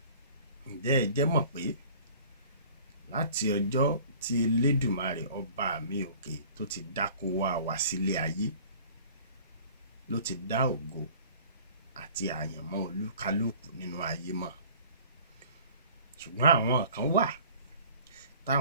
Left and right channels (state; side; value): inverted; both; correlation -0.48